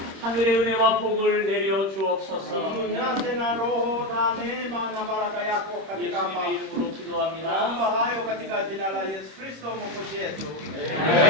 하늘의 은혜와 복을 내려 주옵소서. Tujaze na roho na neema na baraka yako katika hapa. 예수님의 이름으로 기도합니다. Naomba hayo katika jina la Yesu Kristo Mwokozi wetu.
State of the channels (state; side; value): late; left; 26 ms